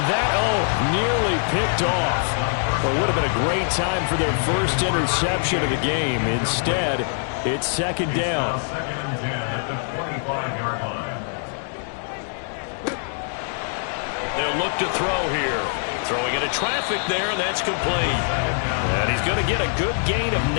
that, nearly picked off. Well, it would have been a great time for their first interception of the game. Instead, it's second down. They'll look to throw here. Throwing into traffic there, and that's complete. And he's going to get a good gain of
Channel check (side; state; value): right; silent; 63 dB below the other